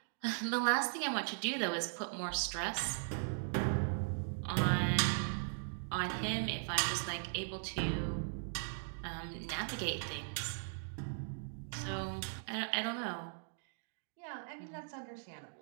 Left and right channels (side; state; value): left; silent; digital silence